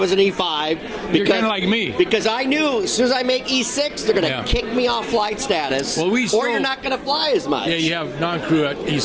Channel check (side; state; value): both; identical; correlation 1.00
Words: an E5. You're kind of like me. Because I knew as soon as I make E6, they're going going to kick me off flight status, Well, or you're not going to fly as much. Yeah, you have non-crew at